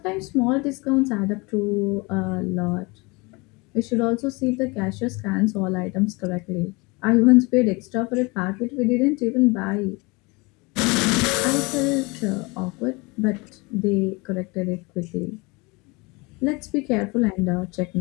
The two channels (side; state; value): right; quieter; 26.6 dB